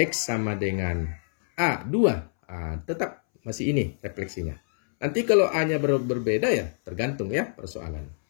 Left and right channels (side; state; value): right; silent; 61 dB below the other